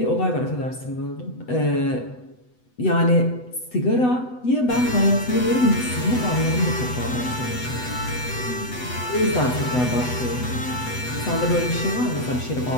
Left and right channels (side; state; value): right; late; 8.0 ms